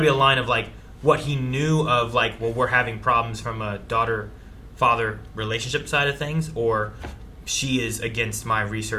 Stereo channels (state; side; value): identical; both; correlation 1.00